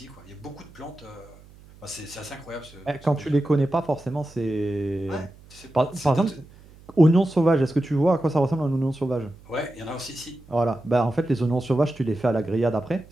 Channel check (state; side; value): noise; right; hum, 23 dB below the sound